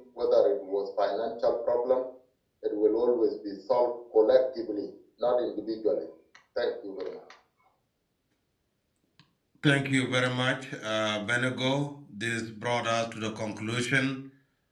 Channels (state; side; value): identical; both; correlation 1.00